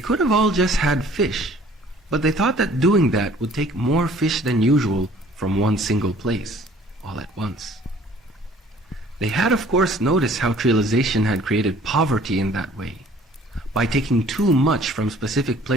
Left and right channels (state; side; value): normal; both; correlation 0.54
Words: have all just had fish, but they thought that doing that would take more fish than usual from one single place, all at once. They had of course noticed how trialization had created poverty in that way, by taking too much from specific